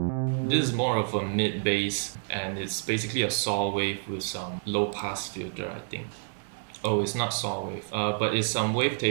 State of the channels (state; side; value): silent; left; digital silence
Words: This is more of a mid bass, and it's basically a saw wave with some low pass filter, I think. Oh, it's not saw wave, but it's some